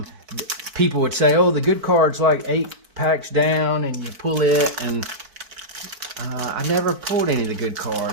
people would say, oh, the good card's like 8 packs down and you pull it, and I never pulled any of the good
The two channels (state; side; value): late; left; 4.5 ms